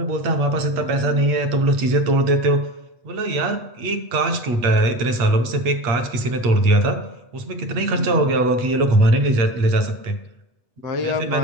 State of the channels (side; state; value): left; late; 8.4 ms